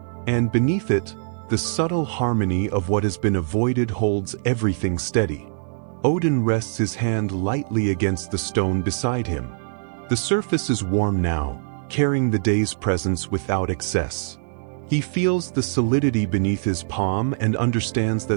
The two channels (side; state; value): left; silent; digital silence